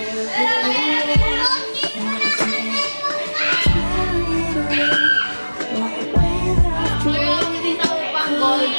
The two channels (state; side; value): inverted; both; correlation -1.00